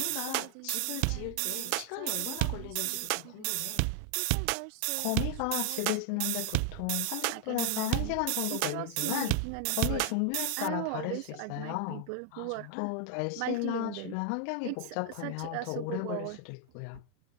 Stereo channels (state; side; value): different; both; correlation 0.00